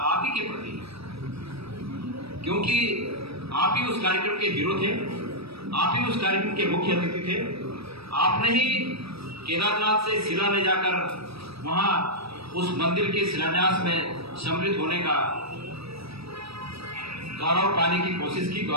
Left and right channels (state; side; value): late; left; 0.77 ms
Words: आप ही के प्रति है, क्योंकि आप ही उस कार्यक्रम के हीरो थे, आप ही उस कार्यक्रम के मुख्य अतिथि थे। आपने ही केदारनाथ से शिला ले जाकर वहां उस मंदिर के शिलान्यास में सम्मिलित होने का गौरव पाने की कोशिश की,